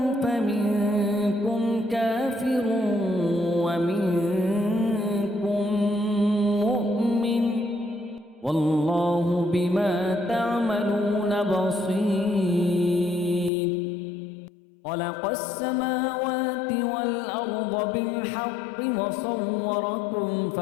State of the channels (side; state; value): right; drops out; at 13.5 s